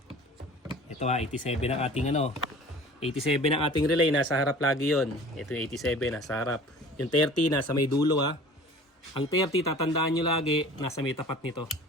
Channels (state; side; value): normal; both; correlation 0.44